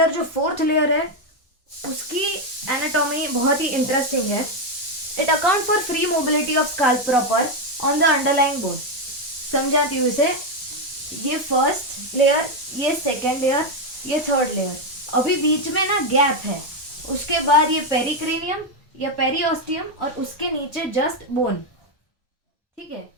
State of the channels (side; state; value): right; late; 1.1 ms